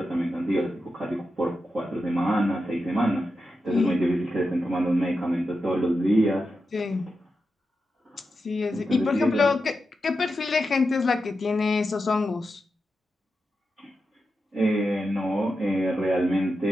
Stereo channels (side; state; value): both; normal; correlation 0.89